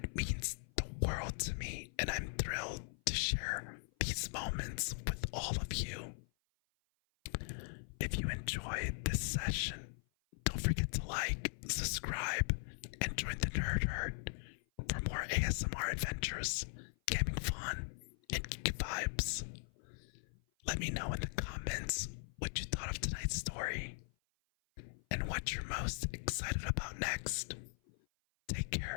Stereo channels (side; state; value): right; silent; 51 dB below the other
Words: means the world to me, and I'm thrilled to share these moments with all of you. ASMR adventures, gaming fun, and geeky vibes. Let me know in the comments what you thought of tonight's story and what you're most excited about next. Take